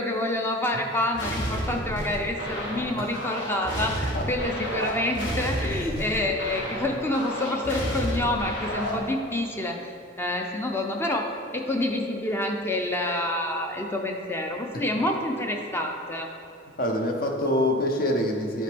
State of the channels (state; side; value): normal; both; correlation 0.39